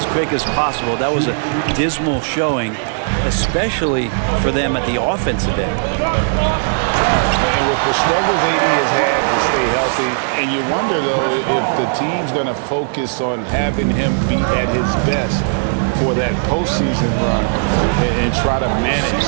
quick as possible. That was a dismal showing, especially for them at the offensive end. And with the struggles AD has had to stay healthy, and you wonder, though, if the team's going to focus on having him be at his best for that postseason run and try to manage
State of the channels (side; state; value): left; silent; 63 dB below the other